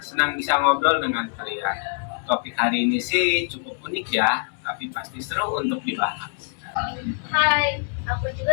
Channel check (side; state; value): right; silent; 63 dB below the other